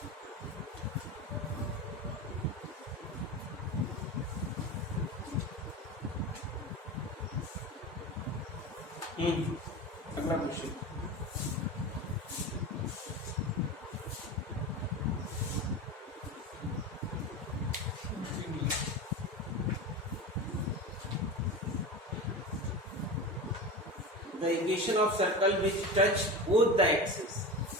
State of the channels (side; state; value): both; normal; correlation 0.26